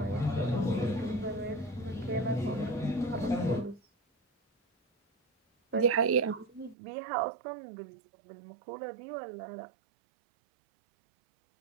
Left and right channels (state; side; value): drops out; left; at 6.8 s